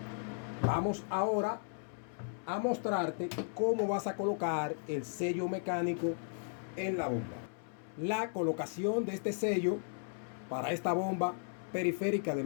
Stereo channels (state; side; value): silent; right; 54 dB below the other